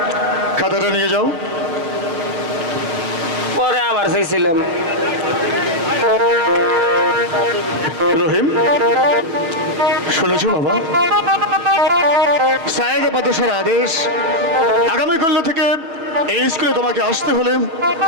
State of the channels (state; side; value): late; left; 6.1 ms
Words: খাতাটা নিয়ে যাও। পরে আবার চাইছিলাম। রহিম শুনেছো বাবা, সায়েদ বাদশার আদেশ, আগামীকাল থেকে এই স্কুলে তোমাকে আসতে হলে